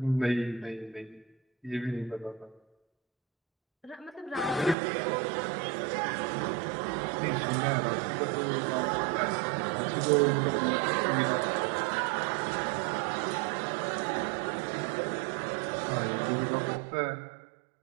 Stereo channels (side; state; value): left; drops out; at 4.8 s